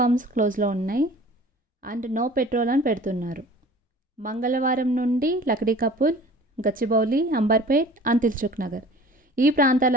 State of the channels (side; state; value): both; normal; correlation 0.45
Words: క్లోజ్లో ఉన్నాయి అండ్ నో పెట్రోల్ అని పెడుతున్నారు. మంగళవారం నుండి లక్డీ కపుల్, గచ్చిబౌలి, అంబర్పేట్ అండ్ దిల్సుఖ్ నగర్ ఈ